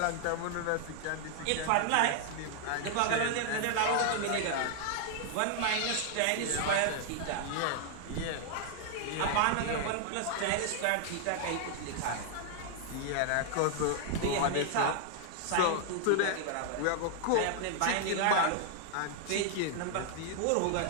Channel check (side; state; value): both; different; correlation 0.00